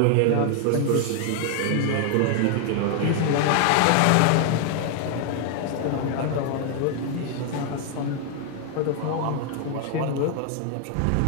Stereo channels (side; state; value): both; different; correlation 0.00